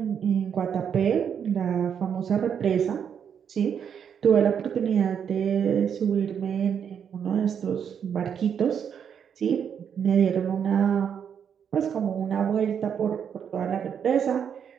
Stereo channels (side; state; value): left; quieter; 7.8 dB